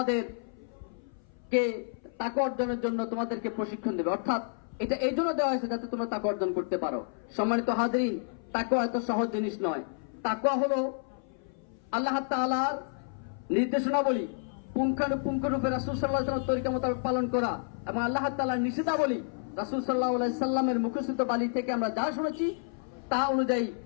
তাকওয়া অর্জনের জন্য তোমাদেরকে প্রশিক্ষণ দেবে, অর্থাৎ এটা এই জন্য দেওয়া হয়েছে যাতে তোমরা তাকওয়া অর্জন করতে পারো। সম্মানিত হাজরিন, তাকওয়া এত সহজ জিনিস নয়। তাকওয়া হলো আল্লাহ তাআলার নির্দেশনাবলী পুঙ্খানুপুঙ্খরূপে রাসূল সাল্লাল্লাহু আলাইহি ওয়াসাল্লামের তরিকা মোতাবেক পালন করা এবং আল্লাহ তাআলার নিষেধাবলী রাসূল সাল্লাল্লাহু আলাইহি সাল্লামের মুখস্থিত বাণী থেকে আমরা যা শুনেছি তা অনুযায়ী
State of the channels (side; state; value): right; silent; 57 dB below the other